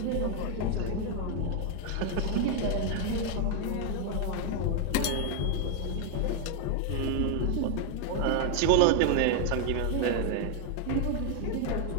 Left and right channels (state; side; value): different; both; correlation 0.00